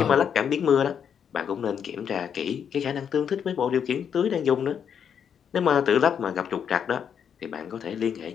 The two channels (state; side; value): quieter; right; 7.8 dB